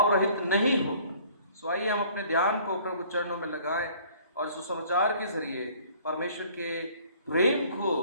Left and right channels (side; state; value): both; inverted; correlation -0.54